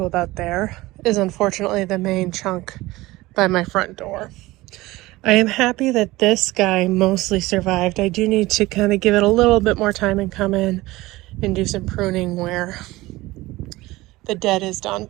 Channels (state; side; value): quieter; left; 19.2 dB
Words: about there, is unfortunately the main chunk by my front door. I am happy that this guy mostly survived. I do need to kind of give it a little bit more time and come in and do some pruning where the dead is done.